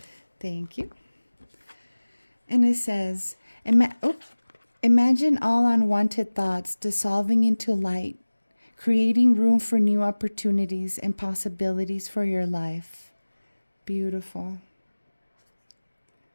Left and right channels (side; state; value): both; inverted; correlation -1.00